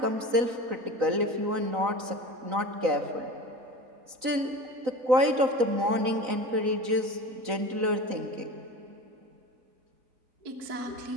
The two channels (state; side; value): late; left; 3.9 ms